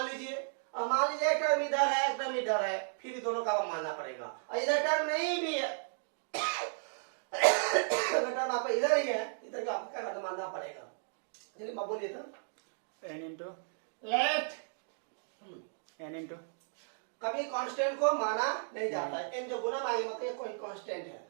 लीजिए। और मान लीजिए एक टर्म इधर है, एक टर्म इधर है, फिर भी दोनों का मानना पड़ेगा। और इधर टर्म नहीं भी है, टर्म आपका इधर ही है, इधर का आपको क्या मानना पड़ेगा। चलिए मैं बोलिए तो n into let n into कभी कांस्टेंट को माना नहीं जाता है। n जो गुना मांगे मतलब ये कोई कांस्टेंट है।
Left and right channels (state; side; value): silent; left; digital silence